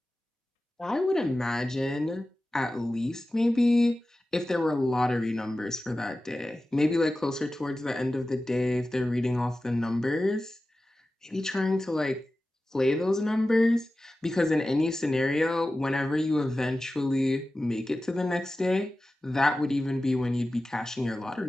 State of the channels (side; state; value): both; normal; correlation 0.95